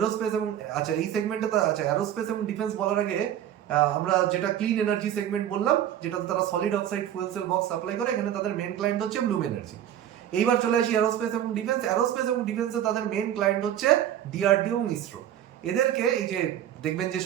এবং আচ্ছা এই সেগমেন্টে আচ্ছা এরোস্পেস এবং ডিফেন্স বলার আগে আমরা যেটা ক্লিন এনার্জি সেগমেন্ট বললাম, যেটাতে তারা solid oxide fuel cell box supply করে, এখানে তাদের মেন ক্লায়েন্ট হচ্ছে ব্লুম এনার্জি। এইবার চলে আসি এরোস্পেস এবং ডিফেন্স। এরোস্পেস এবং ডিফেন্সে তাদের মেন ক্লায়েন্ট হচ্ছে ডিআরডিও এবং ইসরো। এদেরকে এই যে দেখবেন যে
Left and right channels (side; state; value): left; quieter; 10.9 dB